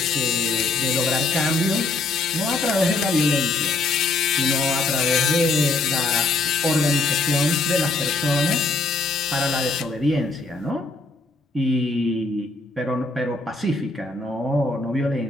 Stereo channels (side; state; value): right; quieter; 3.4 dB